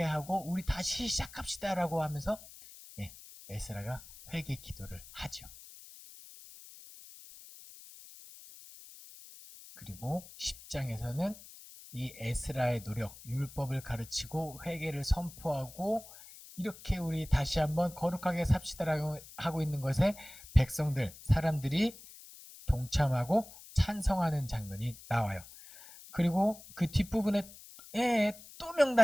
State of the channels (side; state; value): left; noise; hiss, 18 dB below the sound